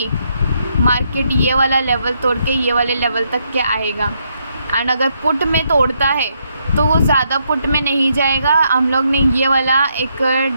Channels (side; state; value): both; inverted; correlation -0.76